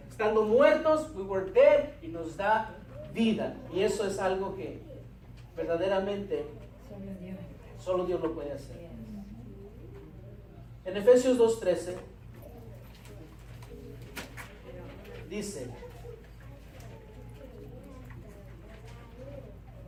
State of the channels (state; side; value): identical; both; correlation 1.00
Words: Estando muertos, we were dead, y nos da vida. Y eso es algo que verdaderamente solo Dios lo puede hacer. En Efesios 2:13 dice: